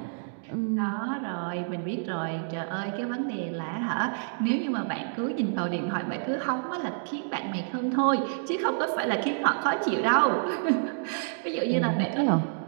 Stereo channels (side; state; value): left; silent; digital silence